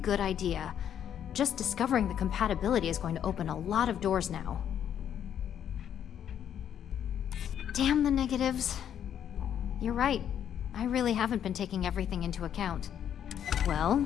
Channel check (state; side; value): quieter; right; 9.5 dB